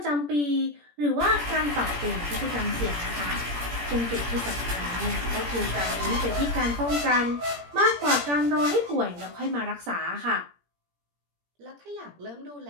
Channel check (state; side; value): late; left; 17 ms